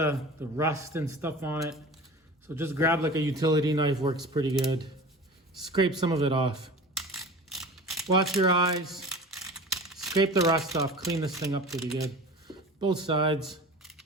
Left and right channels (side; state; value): both; normal; correlation 0.37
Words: rust and stuff on it. So just grab like a utility knife, works pretty good. Scrape some of it off. Watch your eyes. Scrape the rust off, clean this thing up pretty good. Both sides.